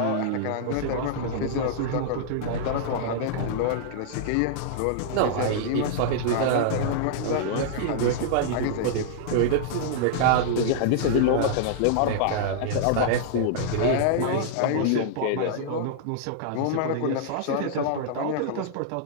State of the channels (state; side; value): different; both; correlation -0.01